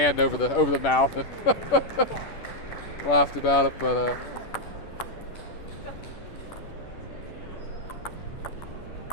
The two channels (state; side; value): late; right; 10 ms